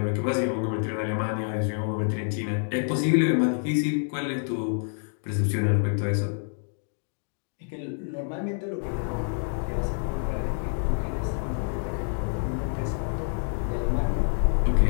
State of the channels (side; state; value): right; silent; 60 dB below the other